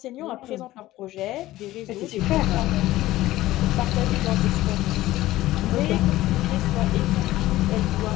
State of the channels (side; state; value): right; quieter; 16.2 dB